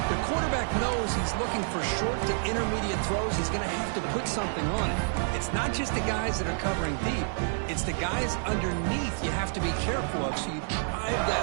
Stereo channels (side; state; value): left; silent; digital silence